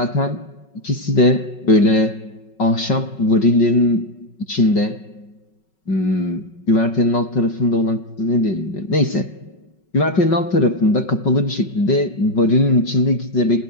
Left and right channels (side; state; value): right; late; 5.4 ms